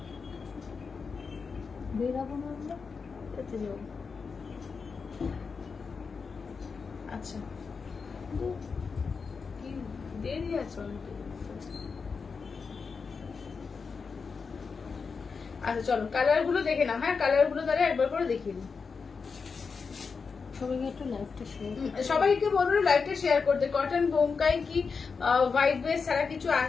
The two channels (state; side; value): quieter; right; 5.2 dB